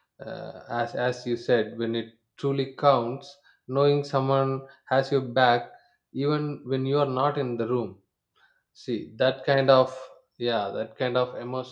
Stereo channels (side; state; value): both; identical; correlation 1.00